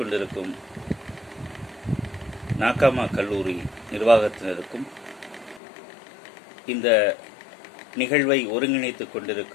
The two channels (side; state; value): right; drops out; at 5.6 s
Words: நாகாமா கல்லூரி நிர்வாகத்தினருக்கும், இந்த நிகழ்வை ஒருங்கிணைத்துக்